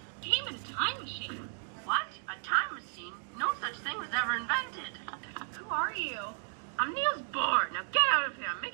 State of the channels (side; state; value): left; silent; 55 dB below the other